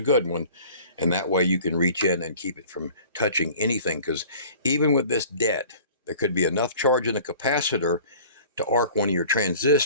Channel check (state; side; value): inverted; both; correlation -0.46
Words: good one. And that way you can reach in and keep it from touching anything, because even with this dead, there could be enough charge in the capacitor to arc one of your